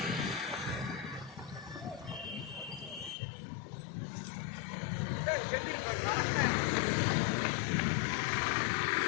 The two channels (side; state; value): right; drops out; at 3.2 s